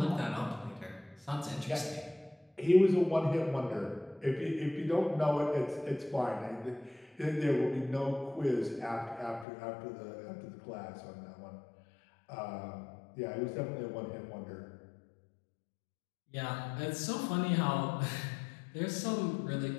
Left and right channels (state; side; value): drops out; right; at 9.5 s